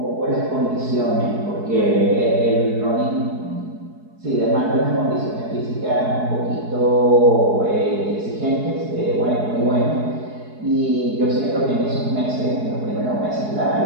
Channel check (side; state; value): left; late; 4.7 ms